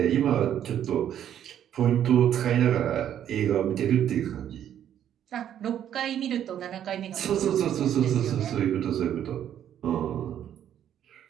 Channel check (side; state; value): left; quieter; 10.2 dB